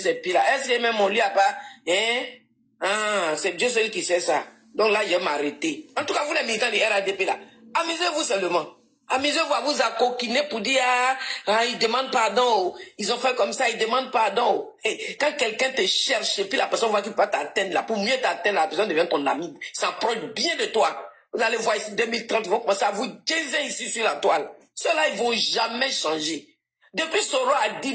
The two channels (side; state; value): both; identical; correlation 1.00